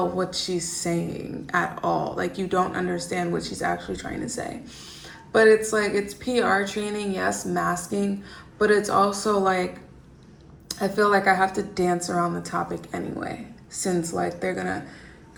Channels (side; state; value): both; identical; correlation 1.00